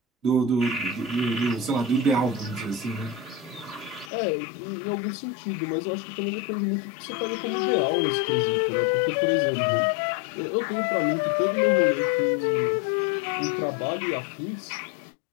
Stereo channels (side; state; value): right; drops out; at 4.1 s